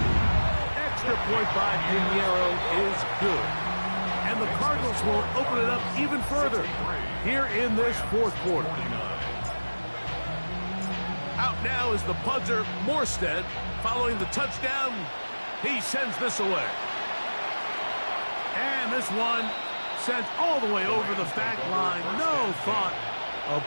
Extra point by Pinheiro is good. And the Cardinals will open it up even further here in this 4th quarter. Out now is the punter, Morstead. Following the touchdown, he sends this away. And this one sent all the way over the back line. No thought of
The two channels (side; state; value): both; inverted; correlation -1.00